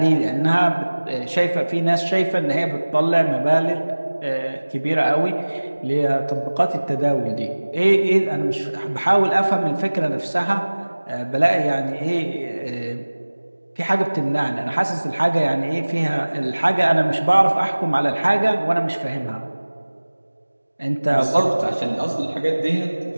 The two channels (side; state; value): both; inverted; correlation -1.00